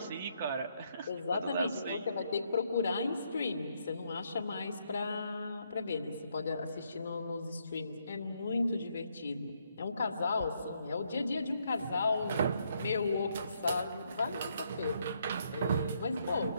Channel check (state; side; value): inverted; both; correlation -0.74